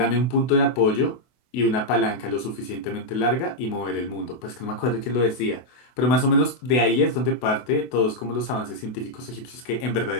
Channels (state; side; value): late; right; 24 ms